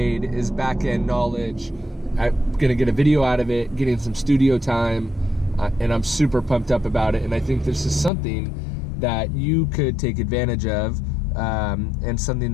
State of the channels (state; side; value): drops out; right; at 8.1 s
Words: is back-end knowledge. I'm gonna get a video out of it, getting some studio time, and I'm super pumped up about it. And I think this is something that you could take advantage of, and something